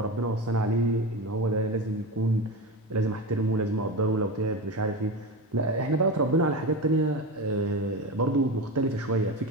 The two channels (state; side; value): normal; both; correlation 0.22